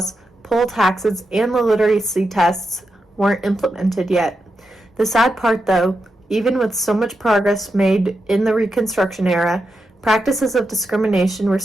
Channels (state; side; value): normal; both; correlation 0.87